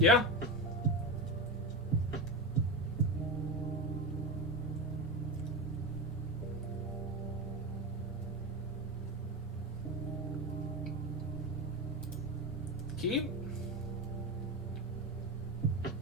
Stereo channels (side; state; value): both; normal; correlation 0.20